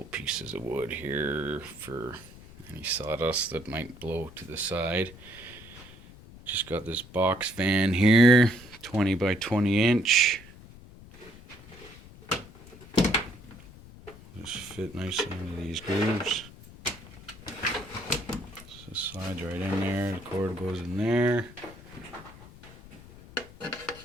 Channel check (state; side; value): noise; left; rumble, 19 dB below the sound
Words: pieces of wood here for any sawdust that might blow to the side. Just got this box fan here, 20 by 20 inch. Just fit nicely into these grooves. So it slides right in there, the cord goes in there.